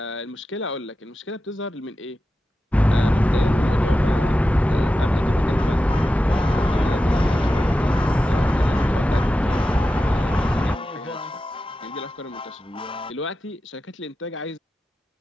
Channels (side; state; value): both; normal; correlation 0.92